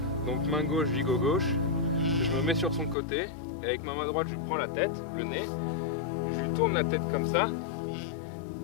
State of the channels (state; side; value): drops out; right; at 3.0 s